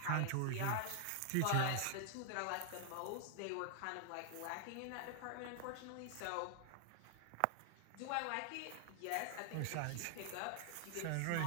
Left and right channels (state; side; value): different; both; correlation 0.00